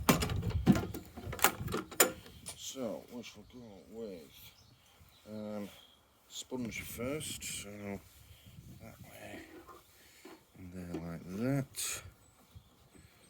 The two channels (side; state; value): both; identical; correlation 1.00